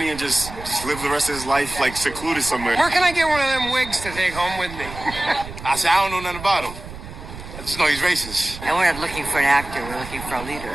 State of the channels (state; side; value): noise; right; rumble, 12 dB below the sound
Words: and just live the rest of his life, like, secluded somewhere. Where can I get one of them wigs to take home with me? I said, I don't know nothing about him. I just know he's racist. And we're not looking for an actor, we're looking for a leader.